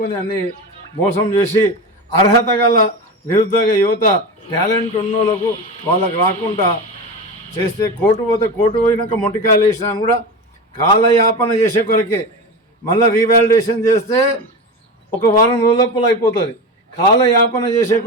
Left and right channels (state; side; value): normal; both; correlation 0.24